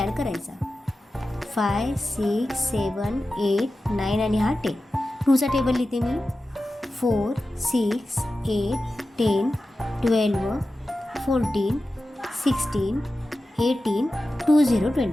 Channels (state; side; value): normal; both; correlation 0.94